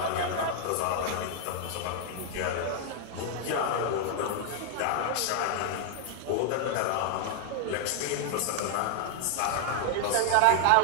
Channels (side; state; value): both; different; correlation 0.00